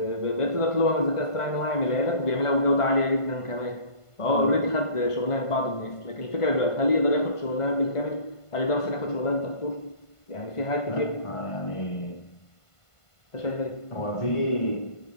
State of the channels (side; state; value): right; late; 1.5 ms